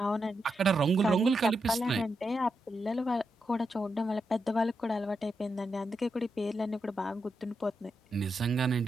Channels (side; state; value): both; normal; correlation 0.85